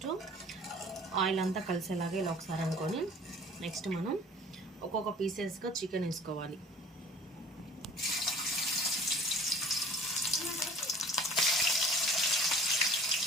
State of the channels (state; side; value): normal; both; correlation 0.48